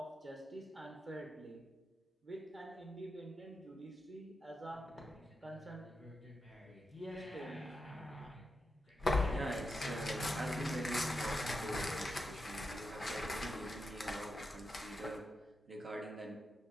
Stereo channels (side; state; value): both; normal; correlation 0.87